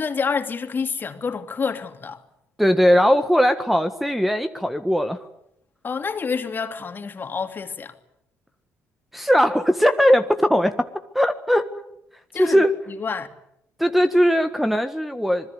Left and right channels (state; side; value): normal; both; correlation 0.93